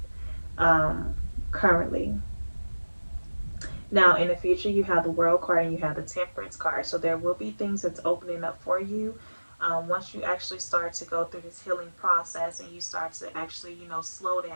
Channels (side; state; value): both; inverted; correlation -1.00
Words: um, currently. Now, in the future, you have the World card and you have the Temperance card. So there will be things that's opening up for you once you actually start to go through this healing process and you start to actually, slow